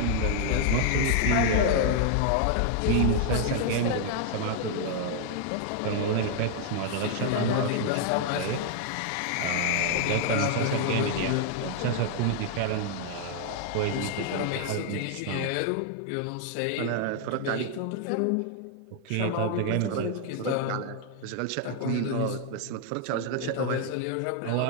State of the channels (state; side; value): different; both; correlation 0.00